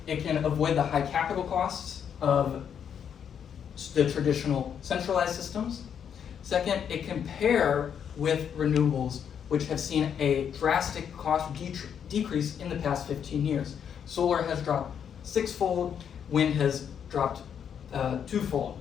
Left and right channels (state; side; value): quieter; right; 8.1 dB